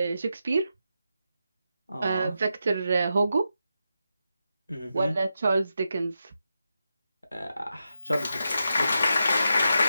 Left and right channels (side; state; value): both; inverted; correlation -0.87